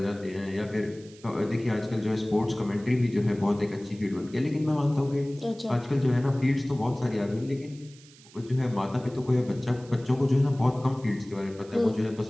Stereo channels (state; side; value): noise; right; hiss, 24 dB below the sound